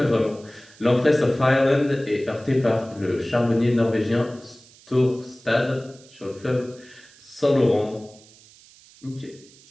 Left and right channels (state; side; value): noise; right; hiss, 25 dB below the sound